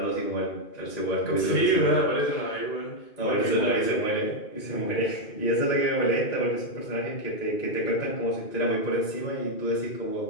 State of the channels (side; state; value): right; late; 2.5 ms